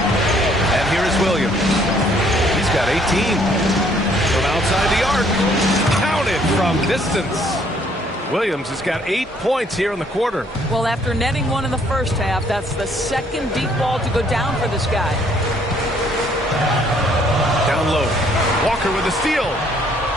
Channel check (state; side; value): normal; both; correlation 0.64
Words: And here is Williams. He's got 18. From outside the arc. Counted from distance. Williams has got 8 points here in the quarter. Well, after netting one in the first half, that's the second deep ball to go down for this guy. Down low. Walker with a steal.